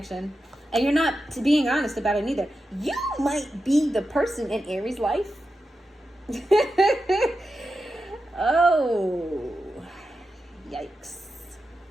And you're not being honest about it either. You might be the person in Aries' life. Oh, yikes.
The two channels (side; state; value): both; normal; correlation 0.90